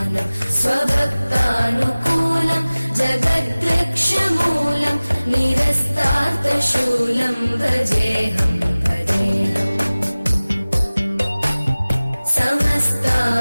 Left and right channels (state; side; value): inverted; both; correlation -0.99